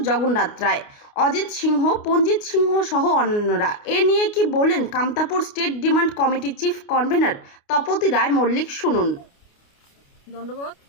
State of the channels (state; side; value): late; right; 29 ms